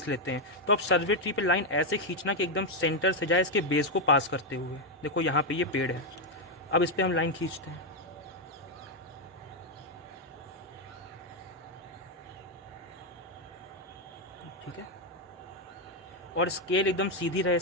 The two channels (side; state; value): both; normal; correlation 0.02